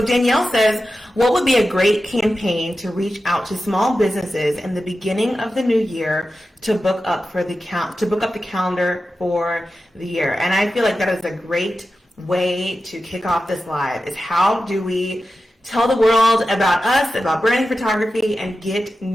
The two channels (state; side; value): normal; both; correlation 0.92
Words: Danielle says, what would be a great campaign to reach out to small businesses in the beginning of the new year to book up the calendar for the year? And I feel like that is a great way to kick off this live, is how do we tell the world about us, about branding photography, and get